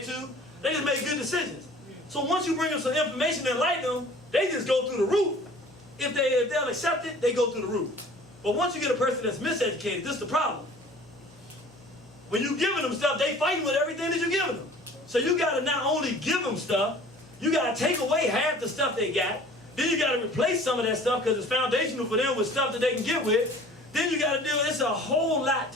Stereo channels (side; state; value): both; normal; correlation 0.48